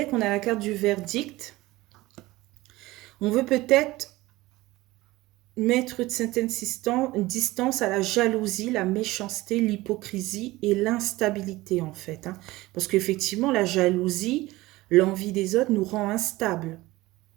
on a la carte du verdict. On veut peut-être mettre une certaine distance à la jalousie, la méchanceté, l'hypocrisie et l'instabilité en fait. Hein. Parce qu'effectivement, la jalousie, l'envie des autres nous rend instables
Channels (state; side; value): quieter; left; 19.1 dB